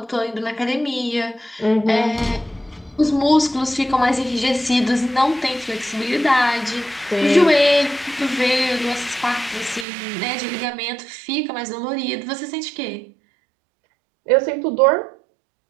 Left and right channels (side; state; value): left; drops out; at 9.9 s